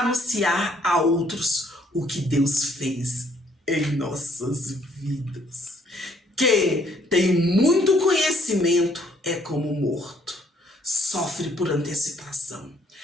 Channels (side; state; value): both; normal; correlation 0.65